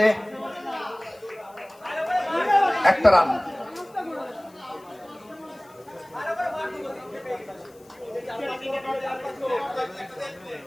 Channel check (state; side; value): noise; left; hiss, 28 dB below the sound